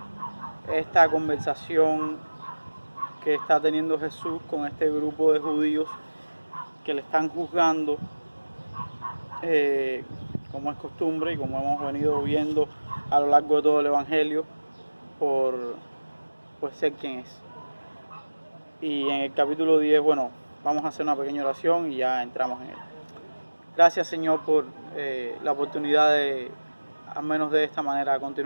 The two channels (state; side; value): inverted; both; correlation -1.00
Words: esta conversación que está teniendo Jesús con este grupo de judíos que le están juzgando, como es costumbre y como hemos venido viendo a lo largo de todo el Evangelio, por ser quien es. Y en el capítulo 10, bueno, vamos a hacer una pequeña oración y ya entramos en él. Gracias, Señor, por la oportunidad de, al menos de esta manera,